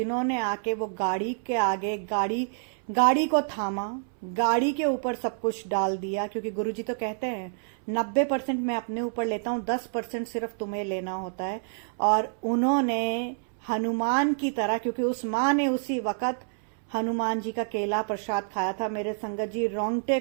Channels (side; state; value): left; silent; 60 dB below the other